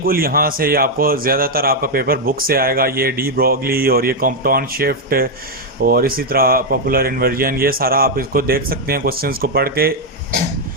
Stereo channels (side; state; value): both; normal; correlation 0.01